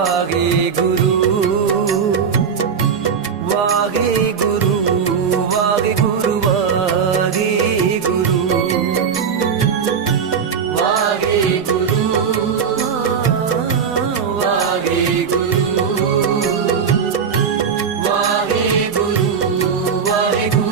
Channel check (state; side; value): quieter; left; 6.6 dB